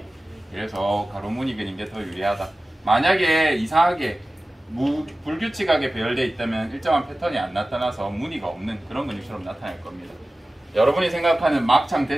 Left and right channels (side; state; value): both; normal; correlation 0.96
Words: 그래서 가로무늬근인 게 더 유리하다. 만약에 이상하게 불규칙하게 배열되어 있다면 일정한 패턴이 안 나타나서 무늬가 없는 그런 근육처럼 나타날 겁니다. 여러분이 생각하는 막창,